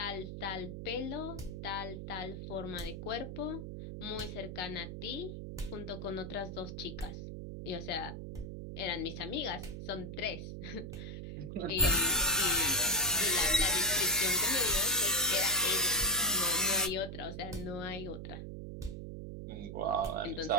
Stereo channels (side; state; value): right; noise; hum, 7 dB below the sound